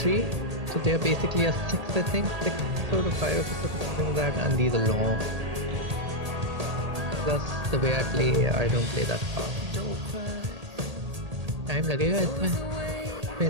So they are basically a 6, I think, 6 episode or 5 episodes, something like that, and these are long. Plus the way I play, I don't play that fast. Time लगेगा इसमें,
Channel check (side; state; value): left; late; 1.8 ms